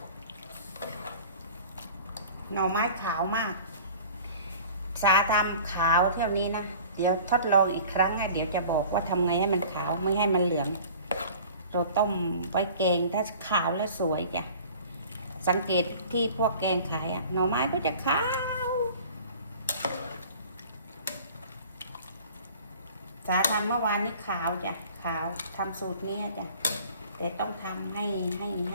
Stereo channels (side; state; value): both; inverted; correlation -0.45